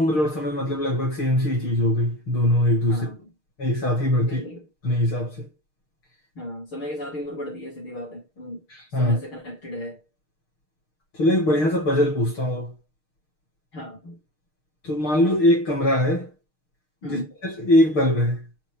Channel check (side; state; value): right; late; 6.5 ms